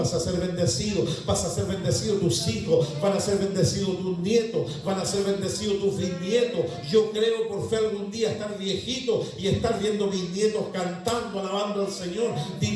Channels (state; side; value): identical; both; correlation 1.00